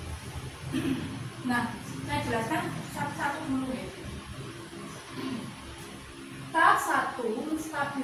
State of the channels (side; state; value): both; identical; correlation 1.00